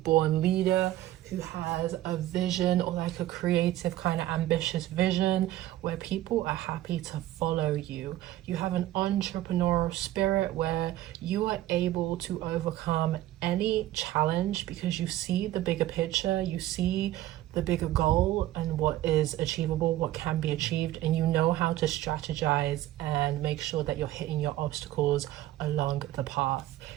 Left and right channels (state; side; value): quieter; left; 14.5 dB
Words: leader who has a vision, or like a creative kind of ambitious vision where people are happy to follow you. You have an entrepreneurial spirit where you are able to overcome any challenge because you see the bigger picture, you see the bigger goal and what is achievable, what can be achieved, and you know how to strategize and make sure that you're hitting your obstacles along the path.